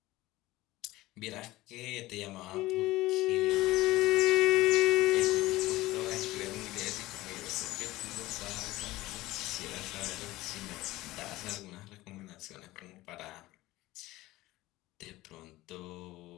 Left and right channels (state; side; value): quieter; right; 18.1 dB